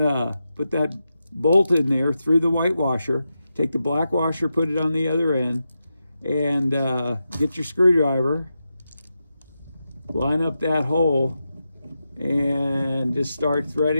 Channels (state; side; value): inverted; both; correlation -0.89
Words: bolt in there through the white washer. Take the black washer, put it on the other end, and get your screwdriver. Line up that hole and just start